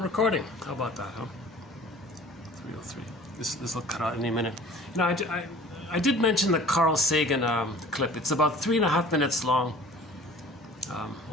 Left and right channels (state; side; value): normal; both; correlation 0.46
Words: recording. How about that, huh? 3:03. This will cut out any minute. You know, I did mention the Carl Sagan clip. It's about 3.5 minutes long.